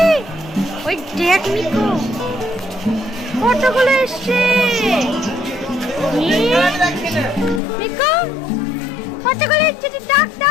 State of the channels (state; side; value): drops out; right; at 7.6 s